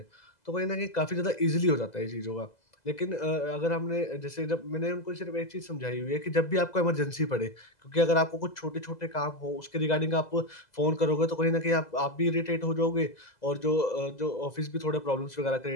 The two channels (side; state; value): right; late; 2.0 ms